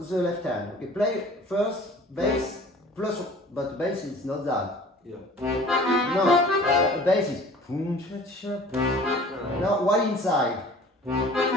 the left hand. Okay, play first bass plus, but bass is not that. Yeah. No, bass is. Now while inside.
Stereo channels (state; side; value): normal; both; correlation 0.47